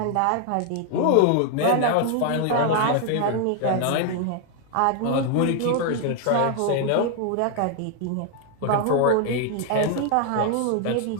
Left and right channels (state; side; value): different; both; correlation 0.00